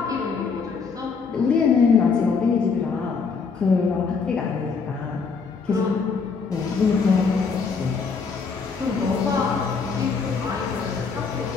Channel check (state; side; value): quieter; right; 5.2 dB